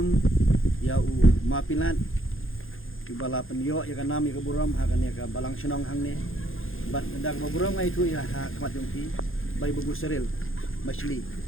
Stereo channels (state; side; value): late; right; 0.60 ms